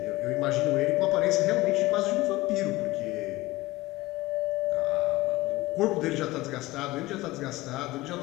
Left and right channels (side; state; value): right; quieter; 19.2 dB